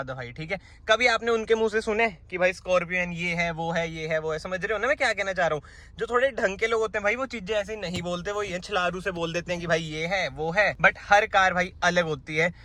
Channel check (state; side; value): identical; both; correlation 1.00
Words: भाई, ठीक है। कभी आपने उनके मुंह से सुने कि भाई स्कॉर्पियन ये है वो है ये है वो है। समझ रहे हो ना मैं क्या कहना चाह रहा हूँ। जो थोड़े ढंग के लोग होते हैं भाई, वो चीजें ऐसे नहीं बोलते, वो ये छलारू से बोल देते हैं कि भाई ये है वो है। बट हर कार भाई अलग होती है।